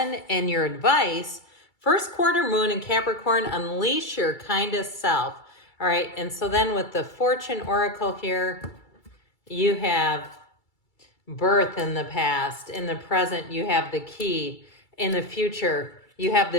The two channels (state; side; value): late; right; 2.3 ms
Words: in your advice, first quarter moon in Capricorn, unleash your kindest self. All right, and so then with the Fortune Oracle here, you have birth in the past. In the present, you have the key. In the future, you have the